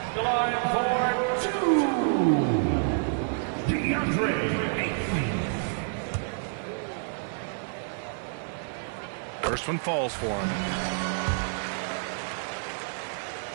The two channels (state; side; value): silent; left; 59 dB below the other